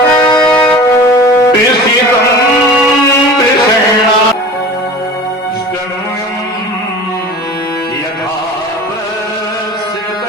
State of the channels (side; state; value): both; normal; correlation 0.39